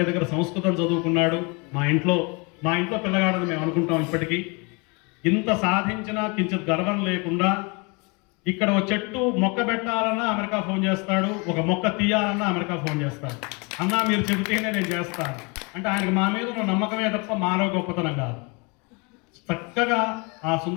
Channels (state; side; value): quieter; right; 30.4 dB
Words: దగ్గర సంస్కృతం చదువుకున్నాడు. మా ఇంట్లో పిల్లగాడని మేము అనుకుంటాం. ఇప్పటికీ ఇంత సాధించినా కించిత్ గర్వం లేకుండా ఇక్కడ ఒక చెట్టు మొక్క పెట్టాలన్నా అమెరికా ఫోన్ చేస్తాడు, ఒక మొక్క తీయాలన్నా అమెరికా ఫోన్ చేస్తాడు. అన్నా మీరు చెబితేనే నేను చేస్తాను అంటే ఆయనకు మా మీద ఉన్న నమ్మకమే తప్ప మాలో గొప్పతనం కాదు. చక్కగా ఆ